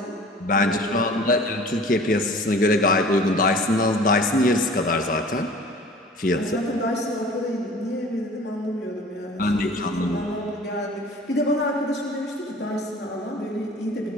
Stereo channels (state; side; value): normal; both; correlation 0.45